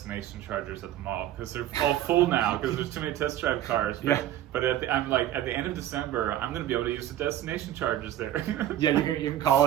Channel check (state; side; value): quieter; left; 12.4 dB